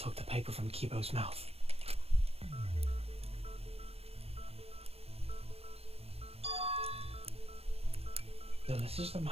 the paper from Kibo's mouth. So this is the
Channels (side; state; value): left; late; 0.29 ms